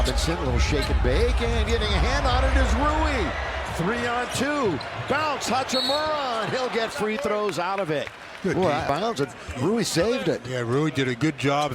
little shake and bake, and getting a hand on it is Rui. 3 on 2. Bounce, Hachimura, and he'll get free throws out of it. Good bounce, and Rui saved it. Yeah, Rui did a good job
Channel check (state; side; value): identical; both; correlation 1.00